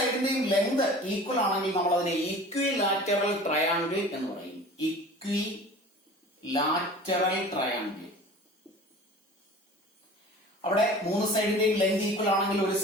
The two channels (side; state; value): both; normal; correlation 0.42